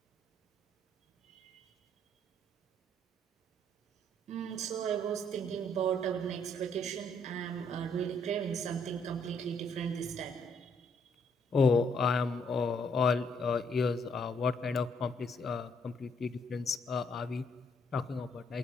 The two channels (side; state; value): both; normal; correlation 0.69